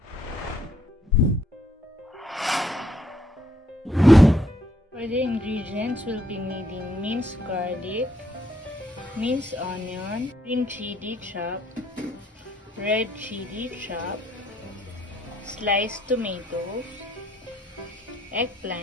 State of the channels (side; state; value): both; normal; correlation 0.70